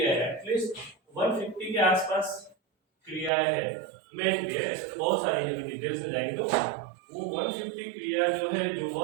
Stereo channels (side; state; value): left; drops out; at 3.3 s